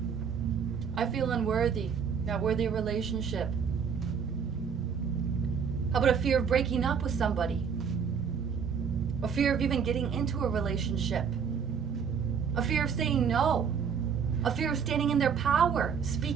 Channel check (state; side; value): quieter; left; 6.7 dB